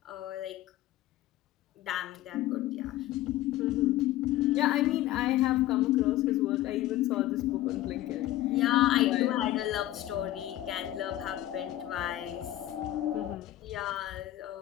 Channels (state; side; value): quieter; right; 14.5 dB